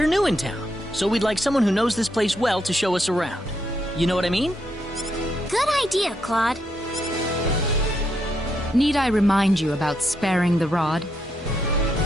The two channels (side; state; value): both; normal; correlation 0.79